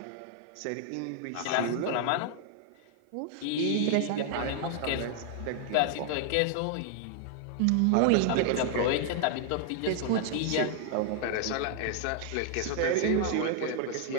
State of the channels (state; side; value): different; both; correlation 0.00